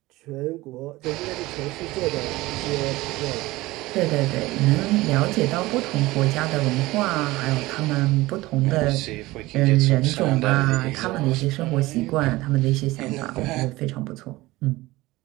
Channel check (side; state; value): left; quieter; 19.3 dB